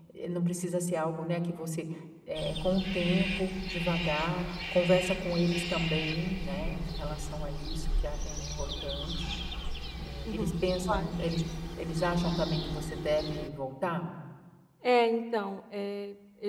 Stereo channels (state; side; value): identical; both; correlation 1.00